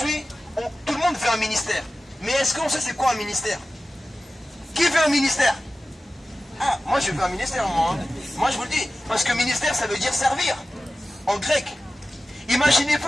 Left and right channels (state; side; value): normal; both; correlation 0.95